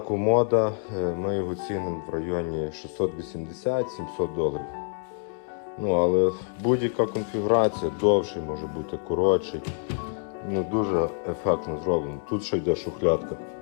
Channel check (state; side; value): silent; right; 57 dB below the other